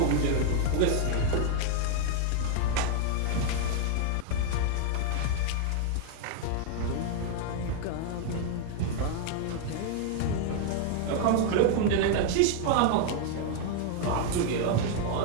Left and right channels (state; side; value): different; both; correlation 0.00